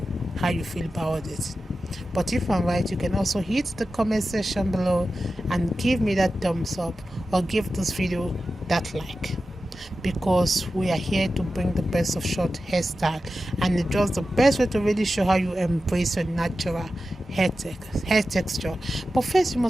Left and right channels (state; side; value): normal; both; correlation 0.93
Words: how you feel about it. But if I'm right, you can also hit the comment section below and give me that thumbs up or give this video that like, because we are here to bring the best of short hairstyle, and it's just the best way to really show how you embrace your natural hair texture. But first, you